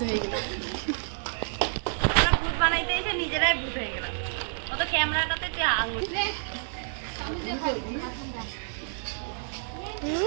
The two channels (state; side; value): silent; left; 59 dB below the other